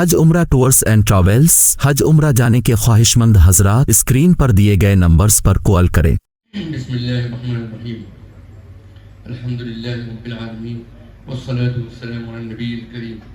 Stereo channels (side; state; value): both; identical; correlation 1.00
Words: عمرہ ٹورز اینڈ ٹریولز حج عمرہ جانے کے خواہش مند حضرات اسکرین پر دیے گئے نمبرز پر کال کریں۔ بسم اللہ الرحمن الرحیم، الحمدللہ رب العالمین، والصلاة والسلام علی النبی الکریم